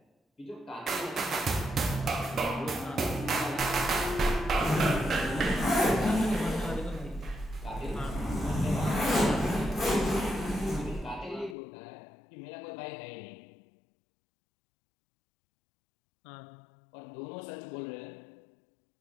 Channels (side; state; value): right; drops out; at 11.6 s